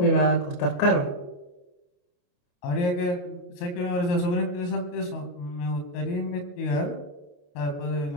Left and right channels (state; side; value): late; right; 28 ms